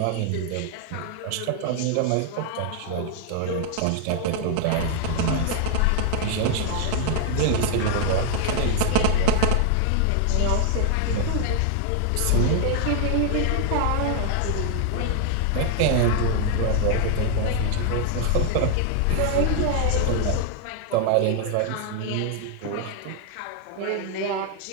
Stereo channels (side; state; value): both; different; correlation 0.00